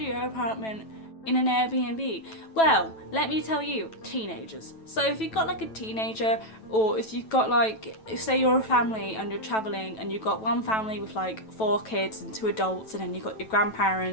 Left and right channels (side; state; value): right; late; 9.1 ms